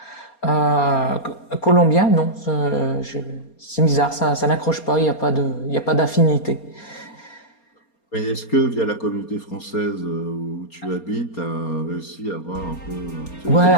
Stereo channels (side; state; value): right; late; 4.3 ms